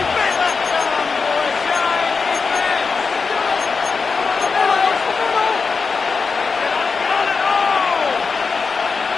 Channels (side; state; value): right; quieter; 4.9 dB